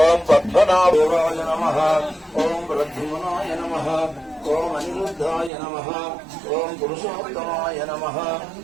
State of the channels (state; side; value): drops out; left; at 5.5 s